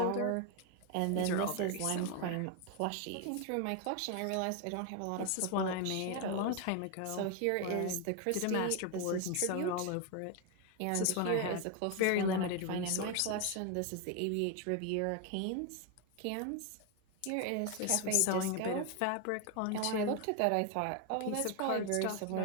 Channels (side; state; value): both; different; correlation 0.01